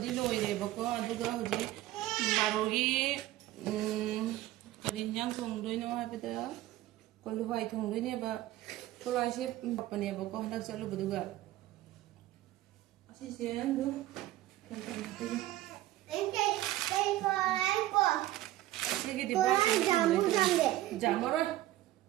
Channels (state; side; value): quieter; left; 15.5 dB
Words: di loire bako. Aduh gua hojik marogi karinyang tunggu ini apa itu? Kalau hai tunggu ini apa? Kalau asyik apa nih bako hendak selalu berduga. Asyik sih tu. Sige di bawah. Jamu samde. Jamu ron.